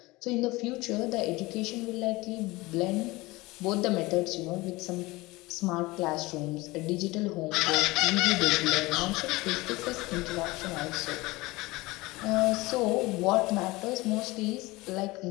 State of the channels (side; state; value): right; quieter; 21.4 dB